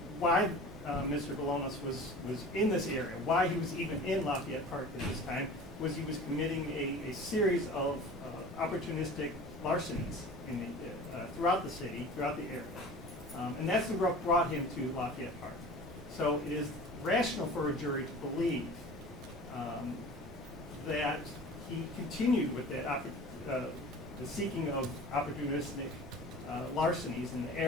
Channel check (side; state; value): right; noise; rumble, 16 dB below the sound